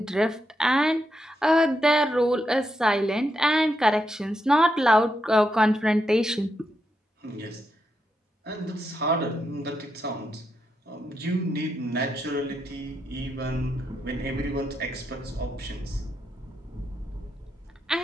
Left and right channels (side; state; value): both; normal; correlation 0.83